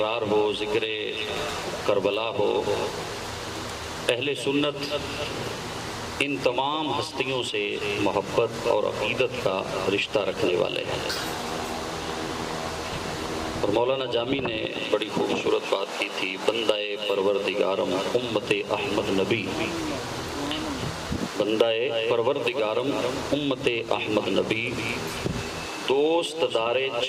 ہو، ذکر کربلا ہو، اہل سنت ان تمام ہستیوں سے محبت اور عقیدت کا رشتہ رکھنے والے ہیں۔ اور مولانا جامی نے بڑی خوبصورت بات کی تھی، بندہ پروردگارم امت احمد نبی، بندہ پروردگارم امت احمد نبی، دوست دار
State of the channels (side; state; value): both; identical; correlation 1.00